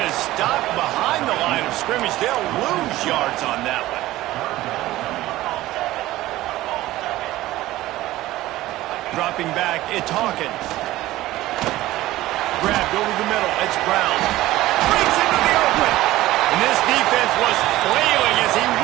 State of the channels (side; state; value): left; quieter; 16.4 dB